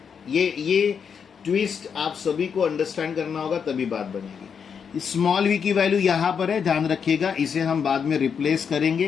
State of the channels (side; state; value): right; quieter; 6.8 dB